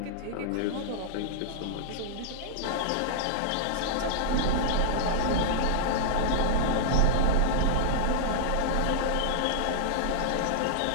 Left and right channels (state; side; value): different; both; correlation -0.01